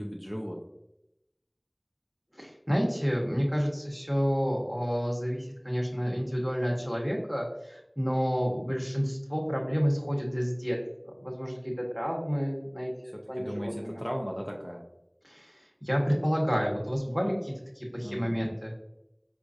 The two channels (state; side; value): identical; both; correlation 1.00